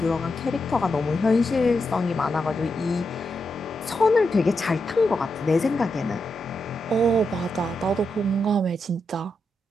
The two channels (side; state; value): both; normal; correlation 0.85